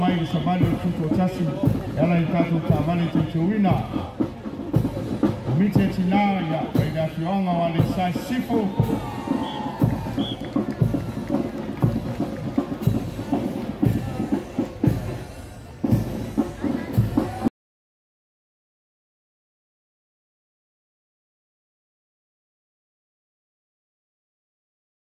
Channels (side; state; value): both; identical; correlation 1.00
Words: le savali o tuto tasi ela i tātou Taavale Teuteuina o mite tina ia pai le afionga o ale sai sifo